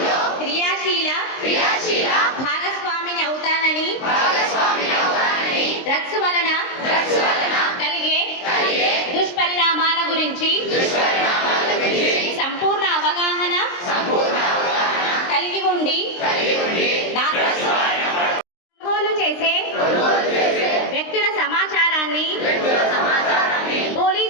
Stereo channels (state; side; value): late; right; 23 ms